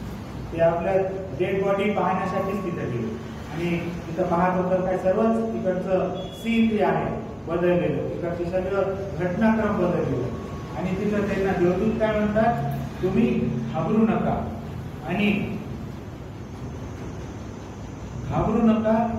ते आपल्या डेड बॉडी पाहण्यासाठीच तिथं गेले आणि तिथं पाहत होतं काय, सर्वच तिकडचं सीन जे आहे बदललेलं, तिकडचे सगळं घटनाक्रम बदललेलं. आणि तिथं त्यांना देवदूत काय म्हणतात, तुम्ही घाबरू नका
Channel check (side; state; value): both; identical; correlation 1.00